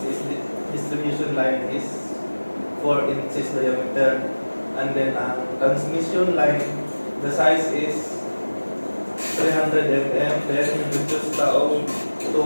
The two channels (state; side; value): inverted; both; correlation -1.00